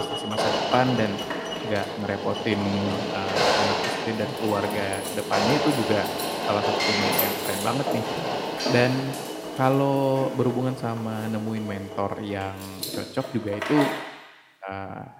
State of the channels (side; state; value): both; identical; correlation 1.00